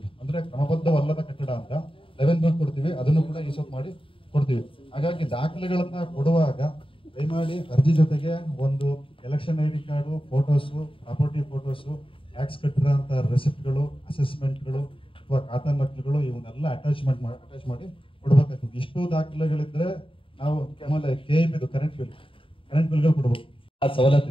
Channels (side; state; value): right; late; 0.26 ms